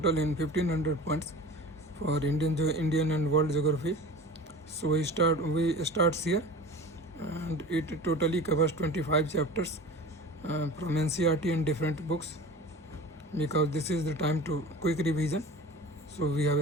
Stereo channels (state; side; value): normal; both; correlation 0.38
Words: in 1500 points for Indian and world geography. So we starts here, and it totally covers 25 chapters from NCERT and different books, because this is the time to quick revision. So we